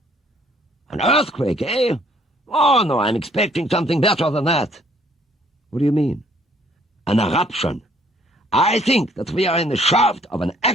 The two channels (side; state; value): both; normal; correlation 0.62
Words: "An earthquake, eh? Oh, no, I'm expecting something better than that." "What do you mean?" "An eruption. I think that we are in the shaft of an